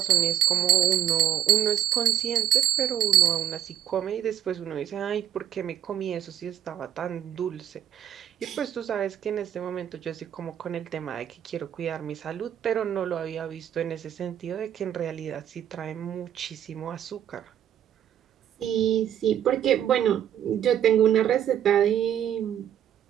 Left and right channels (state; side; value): quieter; left; 10.6 dB